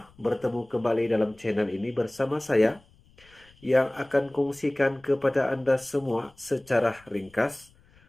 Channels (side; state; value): left; noise; rumble, 29 dB below the sound